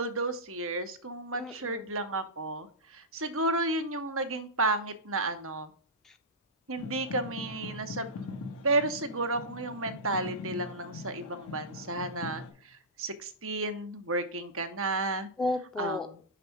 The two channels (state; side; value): normal; both; correlation -0.15